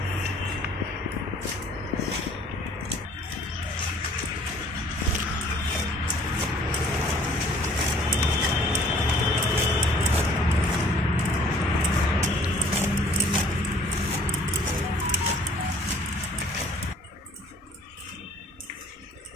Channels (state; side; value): normal; both; correlation 0.56